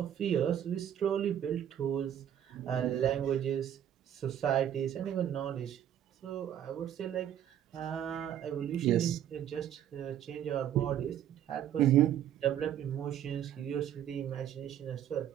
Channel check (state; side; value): quieter; left; 10.3 dB